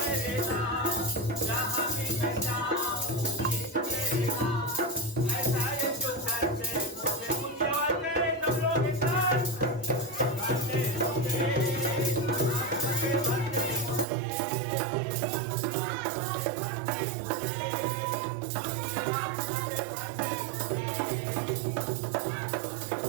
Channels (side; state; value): left; drops out; at 14.1 s